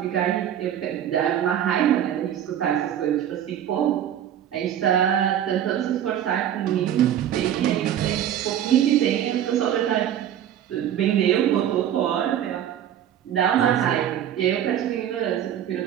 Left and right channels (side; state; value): left; quieter; 10.5 dB